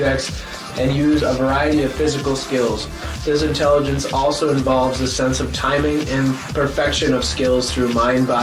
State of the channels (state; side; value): identical; both; correlation 1.00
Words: and use a variety of physical skills. This intelligence also involves the sense of timing and perfection of skills through